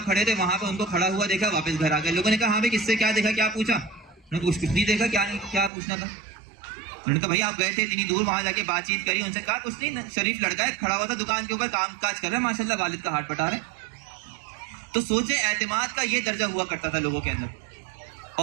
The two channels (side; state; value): left; drops out; at 5.7 s